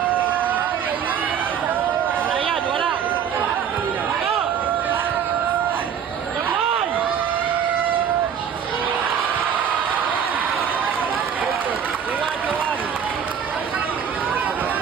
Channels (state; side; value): quieter; left; 8.1 dB